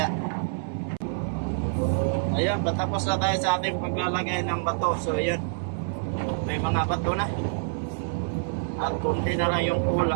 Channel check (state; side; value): silent; left; 60 dB below the other